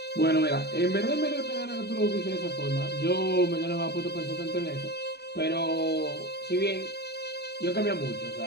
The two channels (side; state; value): right; late; 0.48 ms